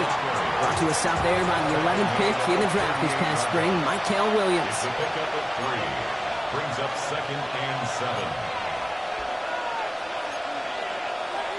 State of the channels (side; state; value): both; identical; correlation 1.00